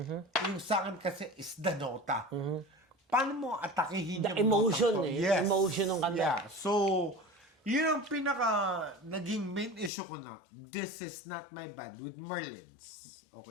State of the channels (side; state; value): right; drops out; at 9.9 s